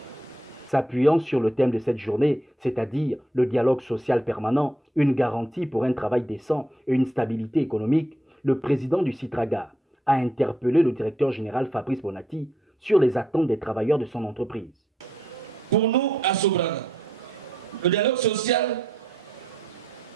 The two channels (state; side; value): normal; both; correlation 0.75